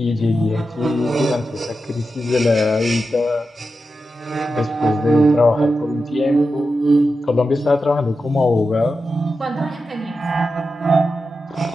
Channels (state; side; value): normal; both; correlation 0.90